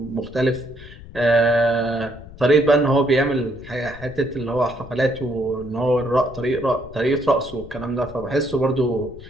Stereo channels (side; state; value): left; noise; rumble, 17 dB below the sound